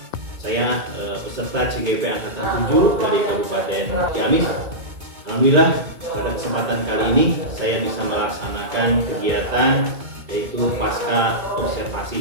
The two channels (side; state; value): left; late; 2.2 ms